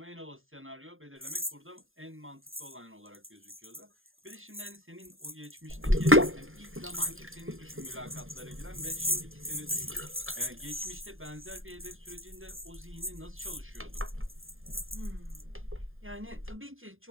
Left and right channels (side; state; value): left; late; 0.59 ms